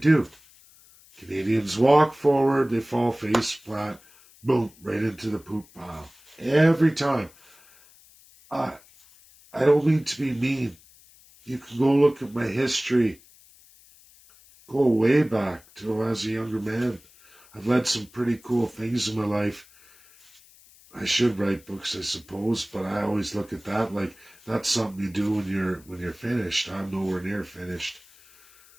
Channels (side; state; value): left; noise; hiss, 26 dB below the sound